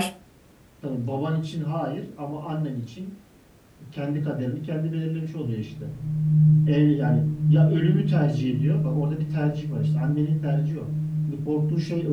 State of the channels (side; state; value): both; identical; correlation 1.00